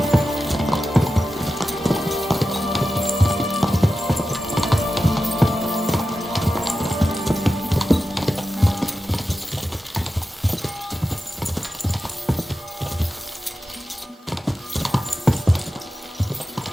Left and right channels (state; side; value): normal; both; correlation 0.92